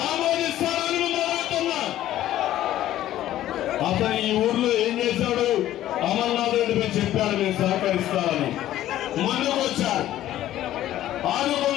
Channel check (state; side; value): quieter; right; 13.3 dB